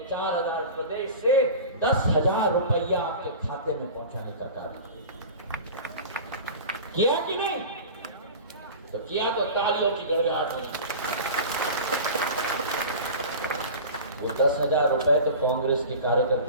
4,000 प्रदेश से 10,000 रुपया आपके खाते में पहुंचाने का कार्य किया कि नहीं? तो किया तो तालियों की गड़गड़ाहट हुई। वो 10,000 रुपए तो कांग्रेस के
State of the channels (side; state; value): both; inverted; correlation -0.35